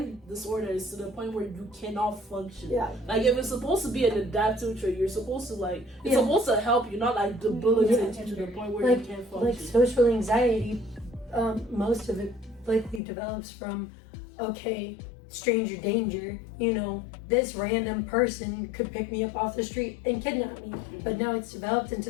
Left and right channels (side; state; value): right; drops out; at 13.0 s